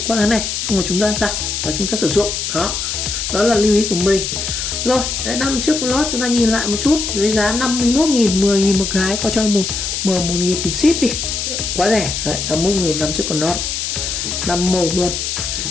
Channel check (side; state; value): left; noise; hiss, 3 dB below the sound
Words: qua cái này xong rồi chúng ta giặt và chúng ta sử dụng đó. Đó là lưu ý của mình. Rồi, đấy, năm chiếc lót chúng ta nhìn lại một chút với giá 51.000, 10.000 một cái, có cho một 1.000 tiền ship đi, quá rẻ. Đấy, 51.000 năm chiếc con lót 5 màu luôn,